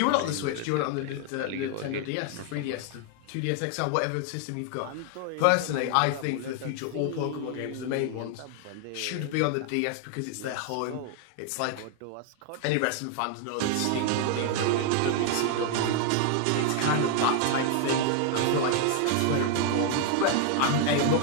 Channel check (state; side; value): different; both; correlation 0.00